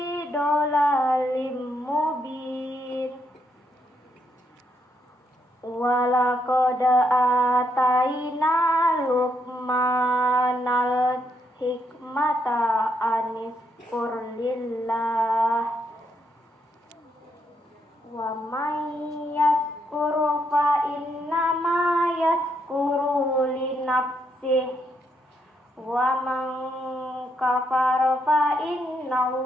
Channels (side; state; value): both; normal; correlation 0.77